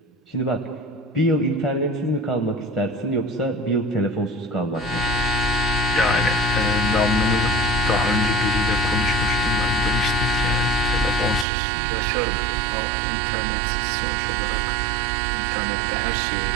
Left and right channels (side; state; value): left; drops out; at 11.5 s